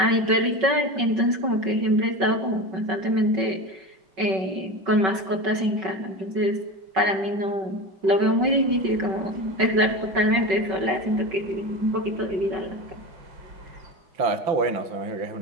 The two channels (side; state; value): left; late; 5.3 ms